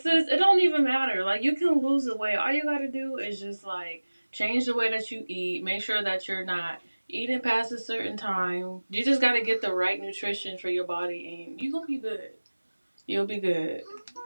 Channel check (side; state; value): both; inverted; correlation -1.00